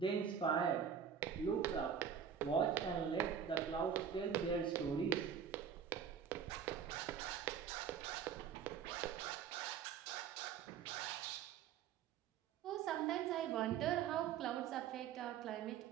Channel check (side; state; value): left; quieter; 7.8 dB